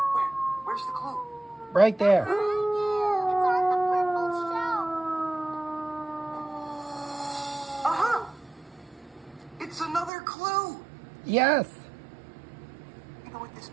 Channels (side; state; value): left; drops out; at 10.1 s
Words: Where's the clue? Right there. It's on the purple shelf. Uh-huh. It's another clue. Yes. You know what this